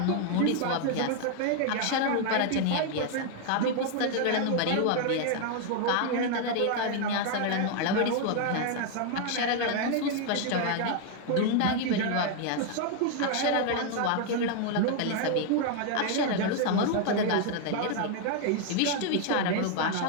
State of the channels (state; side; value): different; both; correlation 0.00